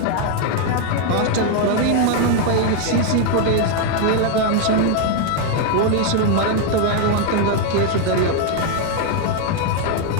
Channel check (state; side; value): different; both; correlation 0.00